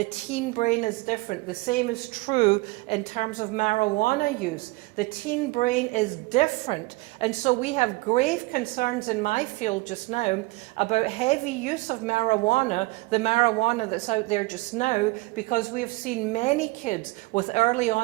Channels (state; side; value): quieter; left; 23.2 dB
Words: teen brain is different. The same is true in terms of marijuana use. The teen brain is different. And so we have grave concerns in my field just now about heavy use of marijuana, the marijuana that's out there just now, because we have seen many kids with early